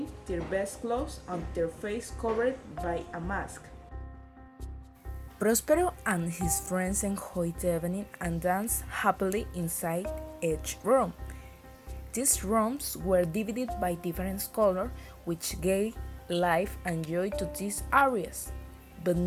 their best clothes and their face covered by a mask. Prospero and his friends enjoyed the evening and danced happily inside each room. These rooms were divided by different colors, which gave life and joy to these areas. But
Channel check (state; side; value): identical; both; correlation 1.00